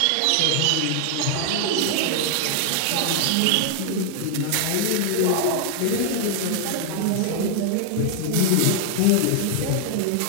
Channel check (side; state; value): both; different; correlation 0.00